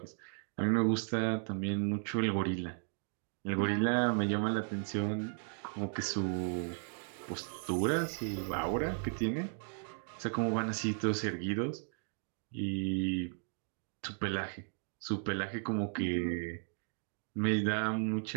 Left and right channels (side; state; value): left; silent; 54 dB below the other